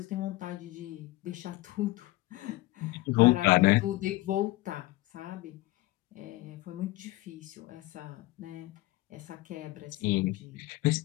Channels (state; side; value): quieter; right; 19.1 dB